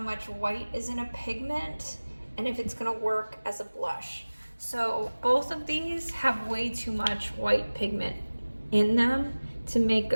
much white is in a pigment and if it's gonna work as a blush. So both of these have way too much white pigment in them to make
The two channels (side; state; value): both; inverted; correlation -1.00